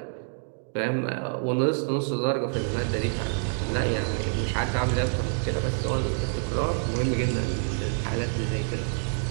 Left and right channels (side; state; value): left; silent; digital silence